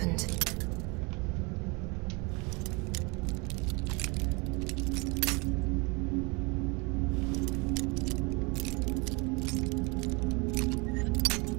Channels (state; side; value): quieter; left; 28.6 dB